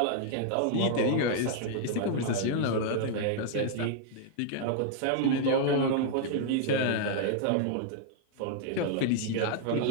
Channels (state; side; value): different; both; correlation -0.01